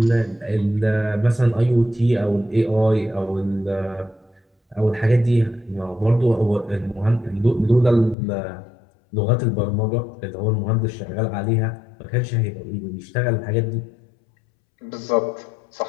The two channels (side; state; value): right; drops out; at 8.2 s